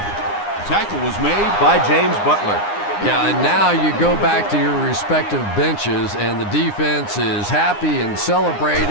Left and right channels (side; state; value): right; late; 9.8 ms